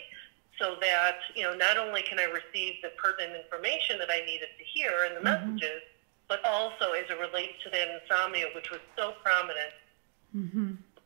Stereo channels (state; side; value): silent; left; digital silence